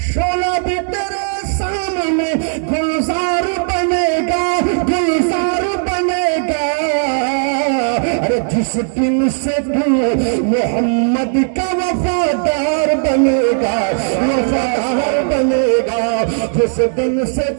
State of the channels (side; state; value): left; silent; digital silence